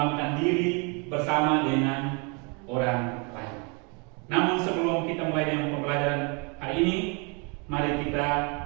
Diri Bersama Dengan Orang Lain. Namun sebelum kita mulai dengan pembelajaran hari ini, mari kita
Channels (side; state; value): left; quieter; 33.2 dB